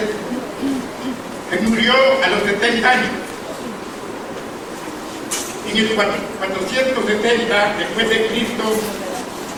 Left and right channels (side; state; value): both; identical; correlation 1.00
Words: que murió a los 70 años. En el 470 después de Cristo,